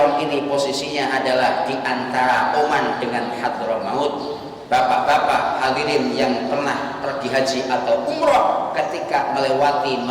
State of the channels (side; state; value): both; identical; correlation 1.00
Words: ini posisinya adalah di antara Oman dengan Hadramaut. Bapak-bapak hadirin yang pernah pergi haji atau umroh, ketika